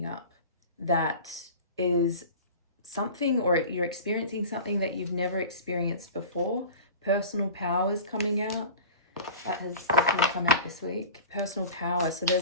up that is something, or you're experiencing something that you've never experienced before. Personal power is coming out. That has definitely come out this week. Personal power. So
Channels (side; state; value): both; inverted; correlation -0.37